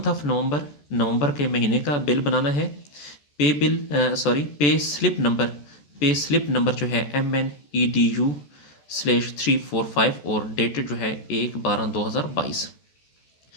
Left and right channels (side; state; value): right; late; 14 ms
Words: of November, नवंबर के महीने का बिल बनाना है। Pay bill pay slip number, pay slip number जो है MNEDU/345 और डेटेड जो है 1/12/2022।